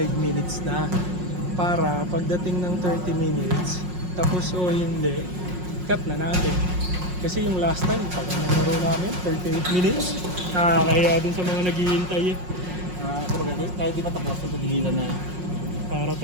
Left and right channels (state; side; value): late; left; 5.5 ms